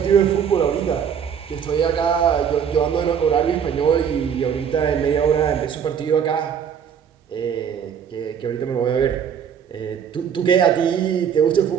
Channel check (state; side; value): quieter; left; 7.9 dB